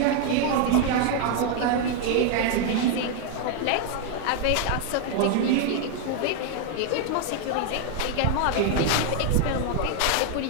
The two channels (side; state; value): both; different; correlation 0.00